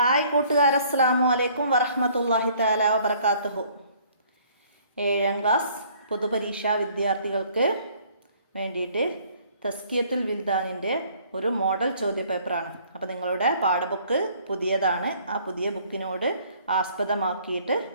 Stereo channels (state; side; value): inverted; both; correlation -0.59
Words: കൂട്ടുകാർ, അസ്സലാമു അലൈക്കും വറഹ്മത്തുള്ളാഹി തആല വബറകാതുഹു. 7ാം ക്ലാസ് പൊതുപരീക്ഷാ വിദ്യാർത്ഥികൾക്ക് വേണ്ടിയിട്ട് തസ്കിയത്തുൽ വിൽദാനിൻ്റെ ഒരു മോഡൽ ചോദ്യപേപ്പറാണ്. അപ്പോൾ നിങ്ങളുടെ പാഠബുക്ക് പുതിയതാണ്. ആ പുതിയ ബുക്കിനോട് ആസ്പദമാക്കിയിട്ട്